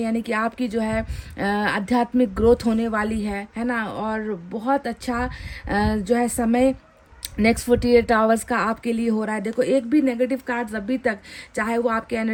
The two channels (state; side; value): identical; both; correlation 1.00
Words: यानी कि आपकी जो है आध्यात्मिक ग्रोथ होने वाली है ना। और बहुत अच्छा जो है समय नेक्स्ट 48 आवर्स का आपके लिए हो रहा है। देखो, एक भी नेगेटिव कार्ड्स अभी तक, चाहे वो आपके